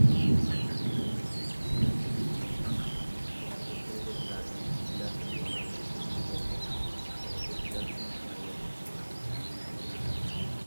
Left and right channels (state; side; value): inverted; both; correlation -1.00